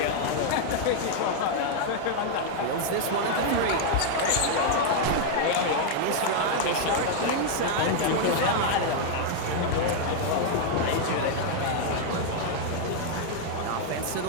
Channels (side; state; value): both; different; correlation 0.00